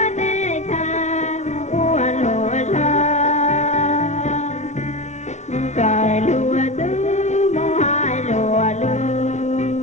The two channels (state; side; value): late; right; 0.33 ms